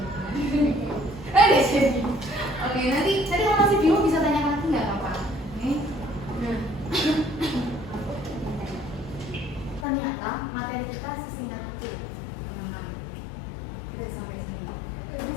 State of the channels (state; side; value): drops out; right; at 9.9 s